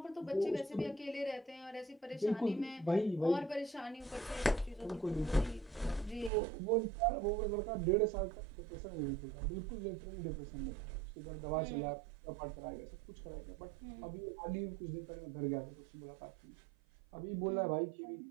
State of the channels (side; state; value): left; drops out; at 6.3 s